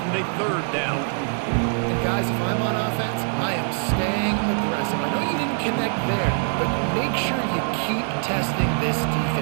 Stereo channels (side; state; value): left; silent; 57 dB below the other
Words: in a 3rd down. And guys, if I'm on offense, I am staying aggressive. I know you didn't connect there, but make sure you keep testing this